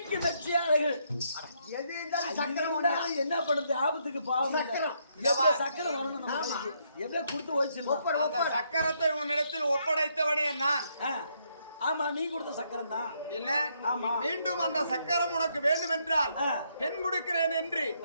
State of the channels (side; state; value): both; inverted; correlation -0.74